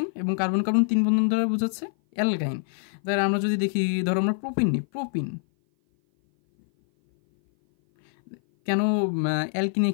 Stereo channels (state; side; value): silent; right; 57 dB below the other